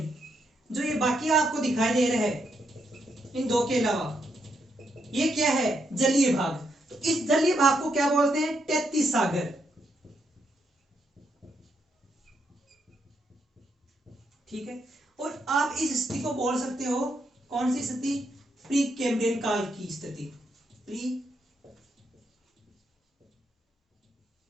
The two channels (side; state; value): both; normal; correlation 0.79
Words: जो ये बाकी आपको दिखाई दे रहा है इन दो के अलावा, ये क्या है? जलीय भाग। तो इस जलीय भाग को क्या बोलते हैं? 33 सागर। ठीक है, और आप इस स्थिति को बोल सकते हो, कौन सी स्थिति? प्री कैम्ब्रियन काल की स्थिति। प्री